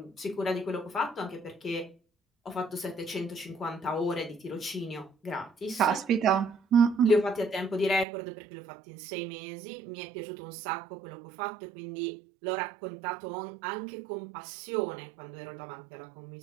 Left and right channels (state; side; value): drops out; left; at 8.1 s